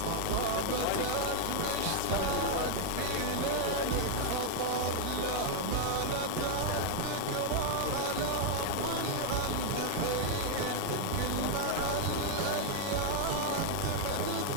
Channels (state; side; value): different; both; correlation 0.00